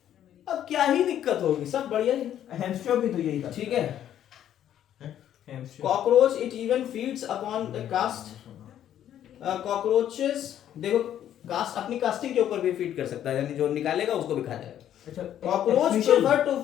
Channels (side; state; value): right; quieter; 10.8 dB